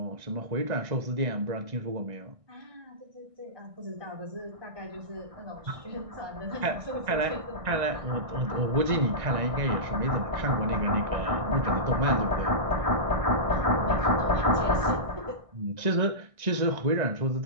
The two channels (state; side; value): late; left; 1.6 ms